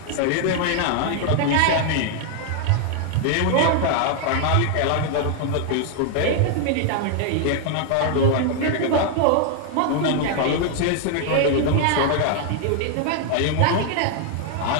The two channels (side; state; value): both; different; correlation 0.00